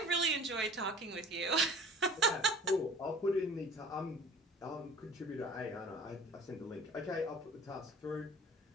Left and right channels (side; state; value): both; normal; correlation 0.45